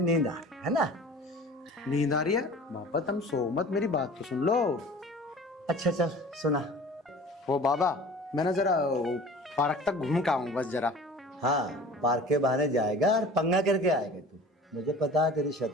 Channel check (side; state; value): both; normal; correlation 0.42